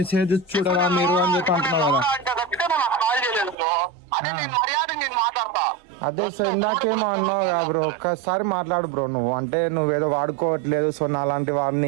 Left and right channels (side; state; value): left; drops out; at 3.6 s